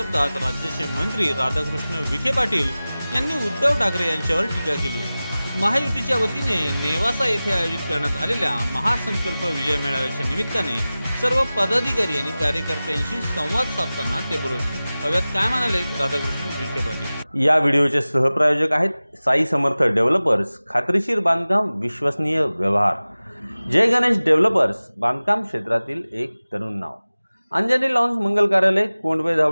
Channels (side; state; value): both; inverted; correlation -0.98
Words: राज्याचे मंत्री राधाकृष्ण विखे पाटील यांनी उद्धव ठाकरे यांच्यावर टीका केली। महायुतीच्या वतीने नेवासा येथे आयोजित करण्यात आलेल्या महासंकल्प विजय मेळाव्याच्या निमित्ताने सर्व पदाधिकारी आणि कार्यकर्त्यांशी संवाद साधताना ते बोलत होते। अव्यात काय म्हणाले राधाकृष्ण विखे पाटील। या व्हिडिओचे सहप्रायोजक आहेत साई समर्थ डेव्हलपर्स, खात्रीशीर बांधकाम, विश्वसनीय व्यवहार। जय गणेश डेव्हलपर्स, बांधकाम क्षेत्रातील एक तरुण नाव। अंजनी लॉन्स मंगल कार्यालय, कोंडवे